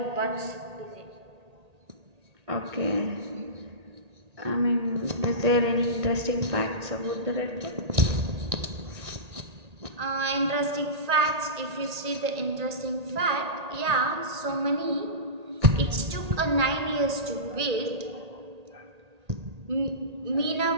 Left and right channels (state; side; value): late; left; 1.8 ms